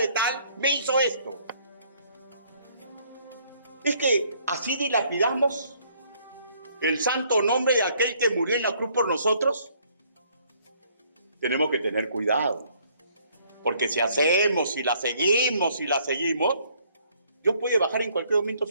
tal me hizo esto. Es que así dilapidamos el santo nombre de aquel que murió en la cruz por nosotros. Tenemos que tener cuidado. Porque si hacemos, si la seguimos, Dios puede bajar en cualquier momento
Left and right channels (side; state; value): both; inverted; correlation -0.64